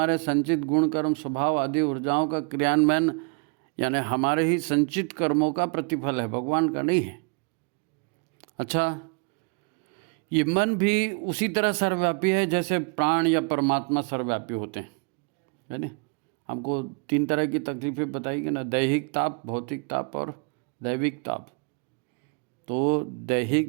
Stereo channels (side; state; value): left; quieter; 35.7 dB